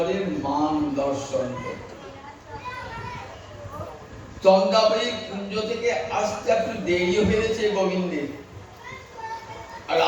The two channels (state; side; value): identical; both; correlation 1.00